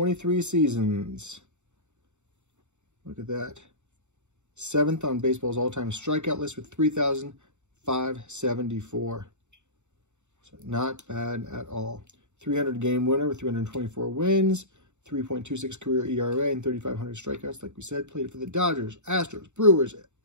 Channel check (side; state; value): left; late; 0.84 ms